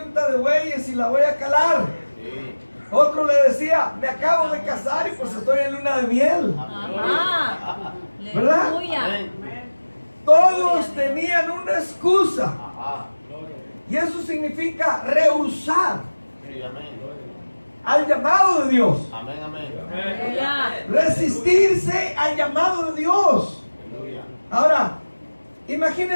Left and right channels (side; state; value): both; inverted; correlation -1.00